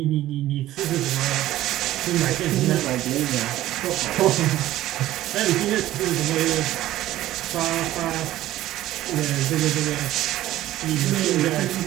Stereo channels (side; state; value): left; quieter; 14.6 dB